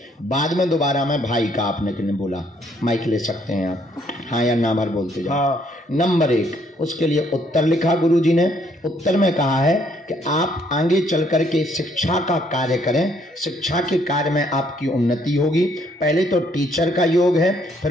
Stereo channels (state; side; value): normal; both; correlation 0.67